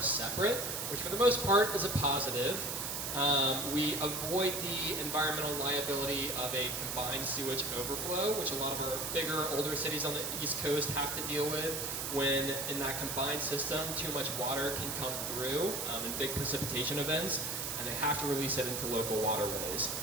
separate, which for the most part is a positive. We avoid the environmental liability of a combined sewage overflow, which a lot of our bigger, older cities on the East Coast have to deal with when in that combined system too much water can come through in big precipitation events, and they have to release it into local waterways.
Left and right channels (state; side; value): noise; right; hiss, 3 dB below the sound